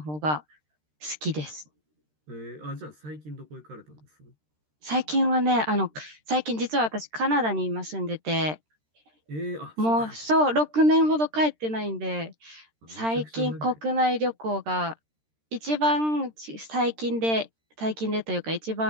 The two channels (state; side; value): late; left; 13 ms